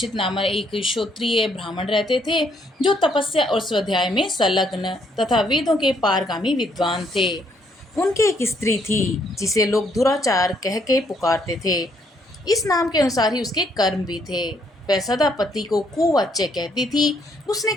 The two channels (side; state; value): both; normal; correlation 0.70